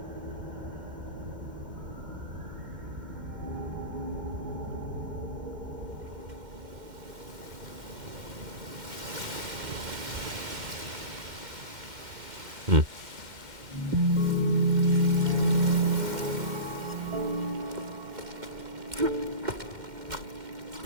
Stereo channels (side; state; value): left; late; 2.1 ms